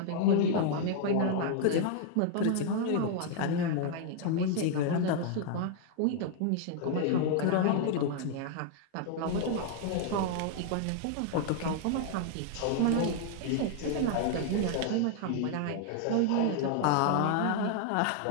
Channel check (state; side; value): different; both; correlation 0.00